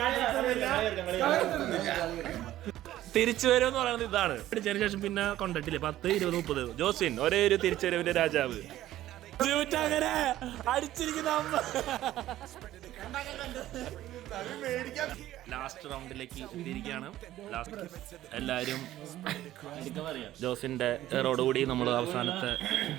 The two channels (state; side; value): quieter; left; 14.0 dB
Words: തിരിച്ചു വരുമെന്ന് പറയുന്നത് ഇതാണ്. അടിച്ചതിന് ശേഷം പിന്നെ കൊണ്ടിട്ടില്ലേ 10, 20, 30. ജോസ്വിൻ ഒരേ ഒരു തിരിച്ചുവരവിന്റെ രാജാവ്. അങ്ങനെ അടിച്ചിരിക്കുന്ന ലാസ്റ്റ് റൗണ്ടിലേക്ക് എത്തിയിരിക്കുകയാണ്. ലാസ്റ്റ് എല്ലാവരും ജോസിന്റെ റോഡുകൂടി നമ്മൾ അവസാനത്തെ